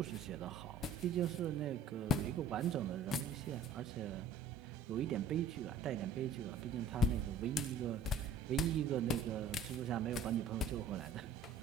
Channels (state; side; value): quieter; left; 4.1 dB